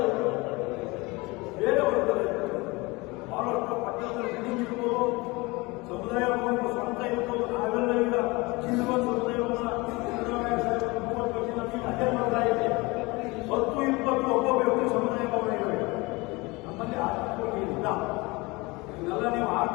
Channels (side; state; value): right; quieter; 24.2 dB